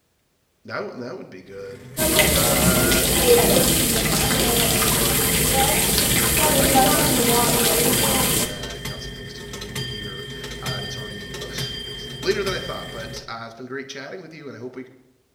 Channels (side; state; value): both; identical; correlation 1.00